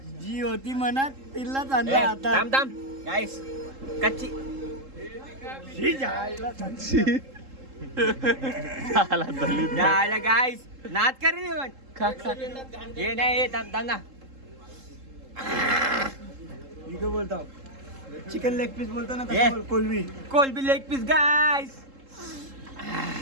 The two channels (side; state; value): left; late; 3.7 ms